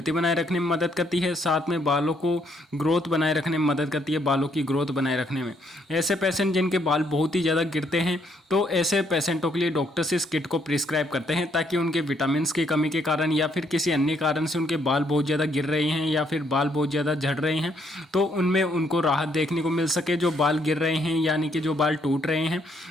बनाए रखने में मदद करती है, साथ में बालों को ग्रोथ बनाए रखने में मदद करती है, बालों की ग्रोथ बनाए रखने में। ऐसे पेशेंट जिनके बाल बहुत ही ज़्यादा गिरते हैं, तो ऐसे पेशेंटों के लिए डॉक्टर्स इस किट को प्रिस्क्राइब करते हैं ताकि उनके विटामिन की कमी के कारण या फिर किसी अन्य कारण से उनके बाल बहुत ज़्यादा गिर रहे हैं या फिर बाल बहुत ज़्यादा झड़ रहे हैं, तो उनमें उनको राहत देखने को मिल सके। जो बाल गिर रहे हैं यानी कि जो बाल टूट रहे हैं,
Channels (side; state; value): both; normal; correlation 0.71